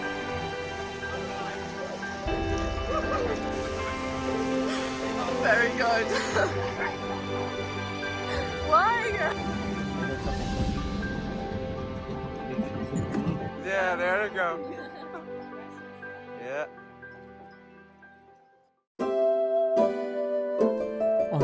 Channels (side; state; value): both; identical; correlation 1.00